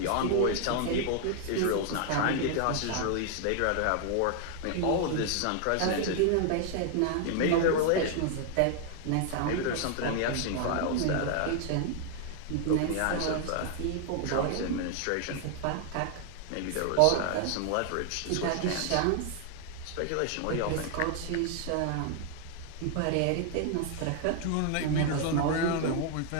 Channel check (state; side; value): different; both; correlation 0.00